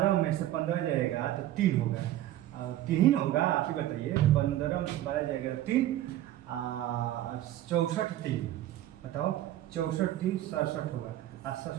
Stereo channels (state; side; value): quieter; left; 13.6 dB